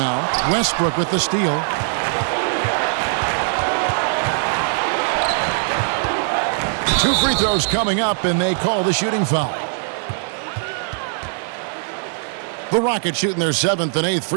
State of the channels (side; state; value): left; silent; 65 dB below the other